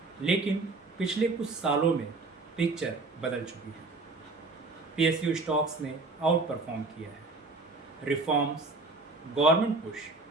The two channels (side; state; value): left; quieter; 3.4 dB